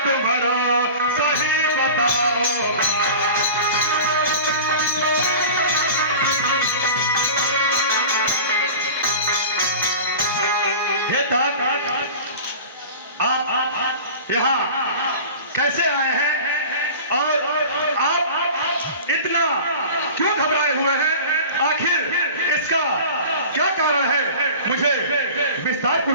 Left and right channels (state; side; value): inverted; both; correlation -0.37